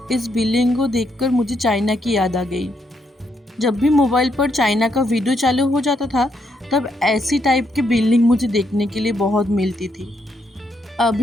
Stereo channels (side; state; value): both; normal; correlation 0.77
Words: इस बिल्डिंग को देखकर मुझे चाइना की याद आ गई। जब भी मोबाइल पर चाइना का वीडियो चालू हो जाता था तब ऐसी टाइप की बिल्डिंग मुझे देखने के लिए बहुत मिलती थी।